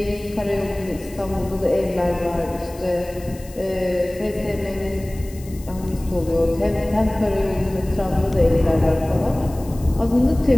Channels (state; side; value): noise; left; hiss, 21 dB below the sound